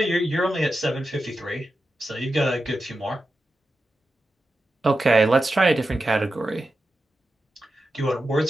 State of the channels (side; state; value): both; normal; correlation 0.91